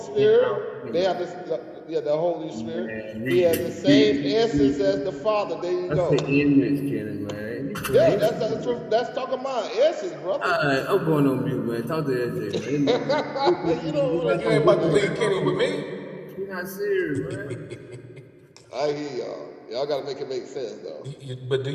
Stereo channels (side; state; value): both; identical; correlation 1.00